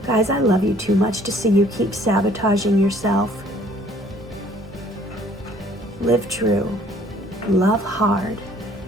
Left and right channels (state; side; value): normal; both; correlation 0.58